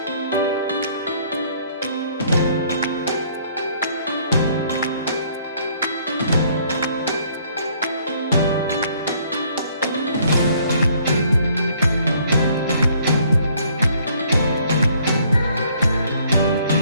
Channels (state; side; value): inverted; both; correlation -0.63